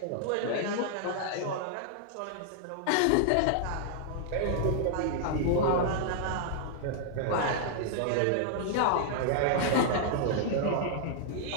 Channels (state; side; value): different; both; correlation -0.01